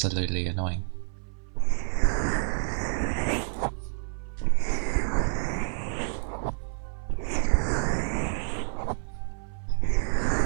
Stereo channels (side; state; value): left; silent; 57 dB below the other